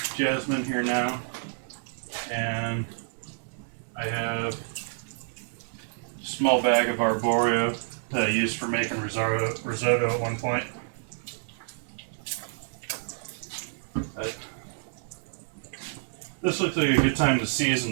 jasmine here now, and I have a small bag of arborio that I used for making risotto at one point. this looks like a good time to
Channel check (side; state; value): left; silent; digital silence